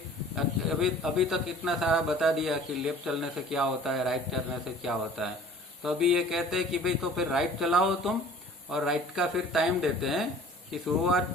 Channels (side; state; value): both; normal; correlation 0.48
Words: अभी तक इतना सारा बता दिया कि लेफ्ट चलने से क्या होता है, राइट चलने से क्या होता है. तो अभी ये कहते हैं कि भाई तो फिर राइट चलाओ तुम, और राइट का फिर टाइम देते हैं कि शुरुआत